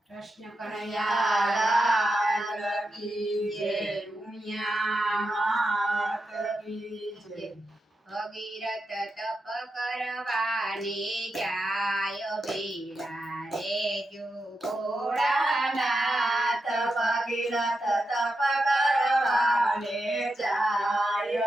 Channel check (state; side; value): normal; both; correlation 0.88